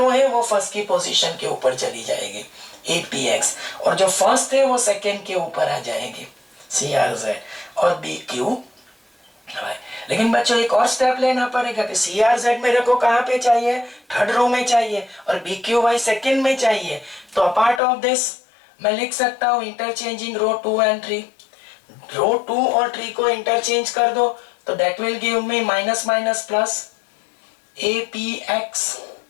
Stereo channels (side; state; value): right; drops out; at 17.8 s